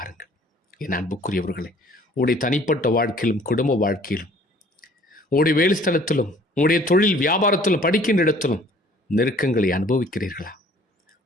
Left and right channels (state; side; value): normal; both; correlation 0.55